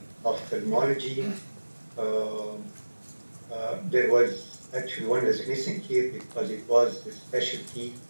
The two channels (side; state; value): both; inverted; correlation -1.00